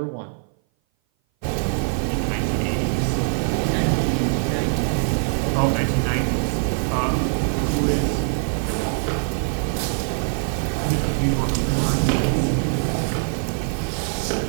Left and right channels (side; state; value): left; silent; 58 dB below the other